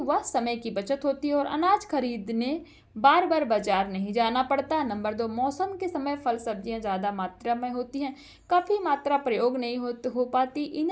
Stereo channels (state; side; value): identical; both; correlation 1.00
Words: समय की बचत होती है और अनाज खरीदने बार बार बाजार नहीं जाना पड़ता। नंबर 2, मौसम के समय फल सब्जियां ज़्यादा मात्रा में होती हैं, काफ़ी मात्रा प्रयोग नहीं हो पाती।